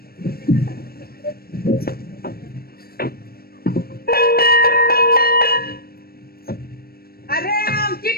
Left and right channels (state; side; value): late; right; 0.44 ms